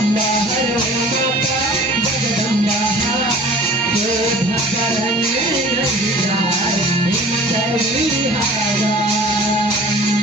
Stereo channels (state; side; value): normal; both; correlation 0.46